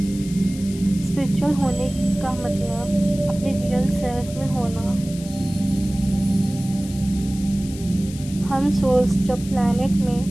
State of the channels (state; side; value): noise; left; hiss, 16 dB below the sound